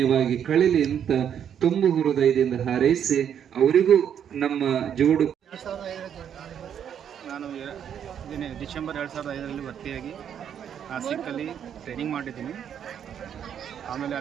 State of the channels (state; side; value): quieter; left; 8.8 dB